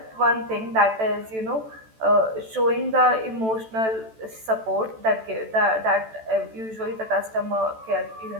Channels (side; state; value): left; late; 14 ms